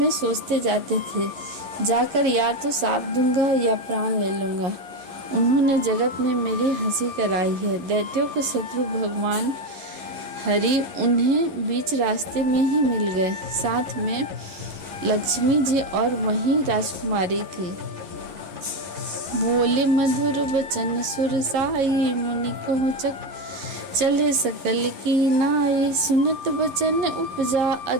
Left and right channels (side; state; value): left; late; 11 ms